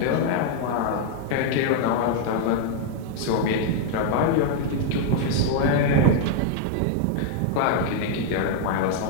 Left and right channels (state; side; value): different; both; correlation 0.00